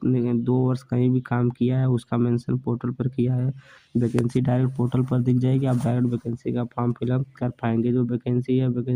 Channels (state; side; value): identical; both; correlation 1.00